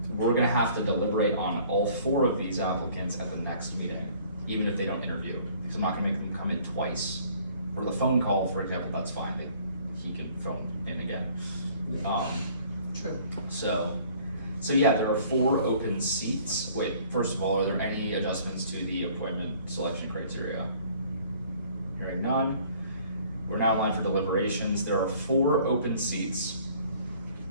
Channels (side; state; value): both; inverted; correlation -0.55